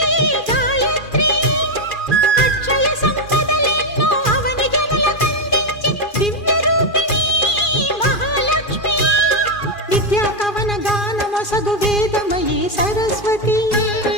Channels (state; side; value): late; right; 2.4 ms